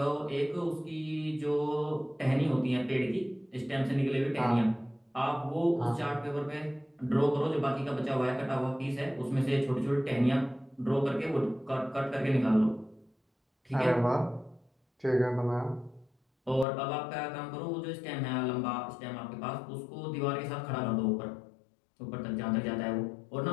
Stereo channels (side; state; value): right; drops out; at 16.7 s